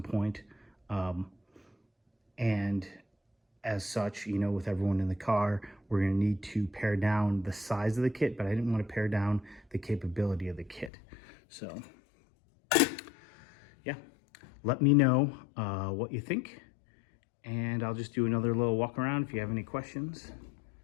point. And as such, you know, with everyone in the car, we're going to need to pare down the size of the kit, but I didn't want to pare down the capability of the kit. So, yeah, let me know what you think, and I'll just do another little walk around. If you have any questions,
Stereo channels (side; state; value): right; drops out; at 10.9 s